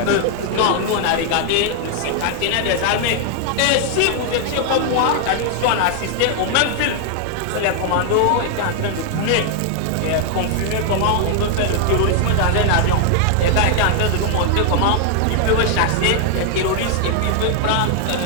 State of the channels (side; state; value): both; different; correlation 0.00